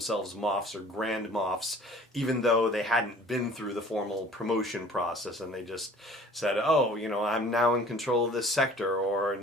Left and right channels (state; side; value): normal; both; correlation 0.49